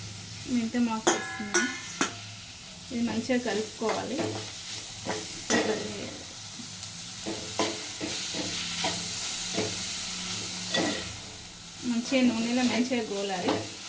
మెంతం ఆకు వేస్తున్నాను. ఇది మంచిగా కలుపుకోవాలి. మంచిగా నూనెలో మంచిగా గోలాలి.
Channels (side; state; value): both; identical; correlation 1.00